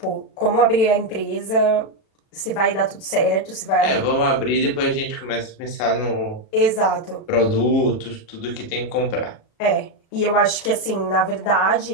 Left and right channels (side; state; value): right; late; 36 ms